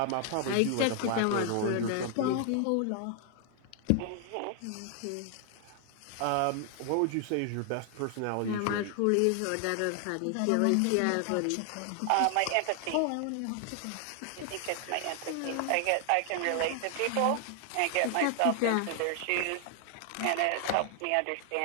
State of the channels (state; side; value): different; both; correlation 0.00